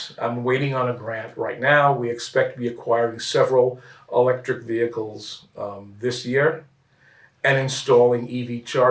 I'm waiting on a grant right now, we expect to be acquiring several electric vehicles this year and installing EV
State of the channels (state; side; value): identical; both; correlation 1.00